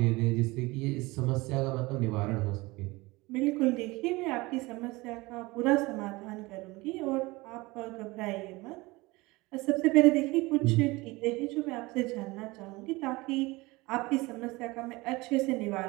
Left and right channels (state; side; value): quieter; left; 22.3 dB